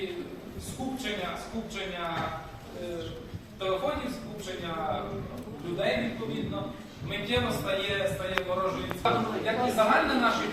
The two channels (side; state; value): both; identical; correlation 1.00